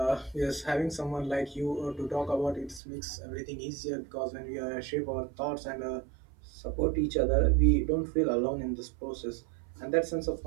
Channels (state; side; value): drops out; left; at 2.8 s